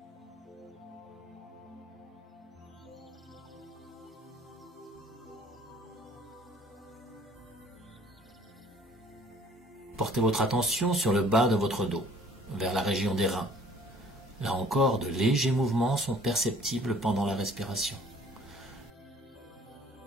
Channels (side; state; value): both; normal; correlation 0.55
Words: Portez votre attention sur le bas de votre dos, vers la région des reins. Là encore, de légers mouvements sont perceptibles pendant la respiration.